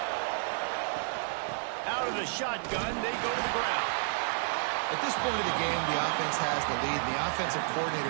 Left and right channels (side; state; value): left; silent; 57 dB below the other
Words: Out of the shotgun, they go to the ground. At this point of the game, the offense has the lead, and the offensive